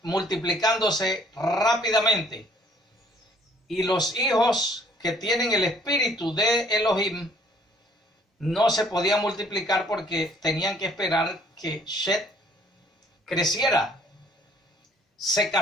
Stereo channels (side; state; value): both; normal; correlation 0.59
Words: multiplicándose rápidamente, y los hijos que tienen el espíritu de Elohim no se podían multiplicar porque tenían que esperar que Shet creciera, se